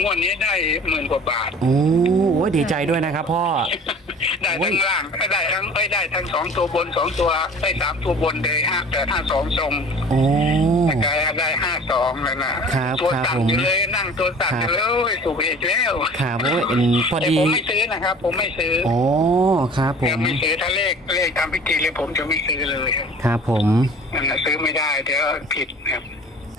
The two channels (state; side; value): normal; both; correlation 0.45